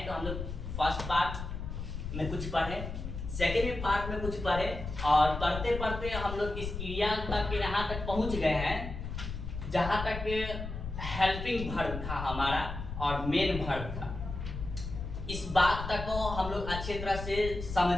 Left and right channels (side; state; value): left; noise; rumble, 7 dB below the sound